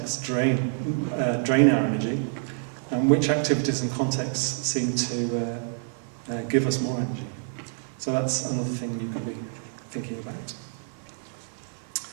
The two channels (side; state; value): left; silent; digital silence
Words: drain our energy, and which activities and contexts seem to give us more energy. So that's another thing you can be thinking about.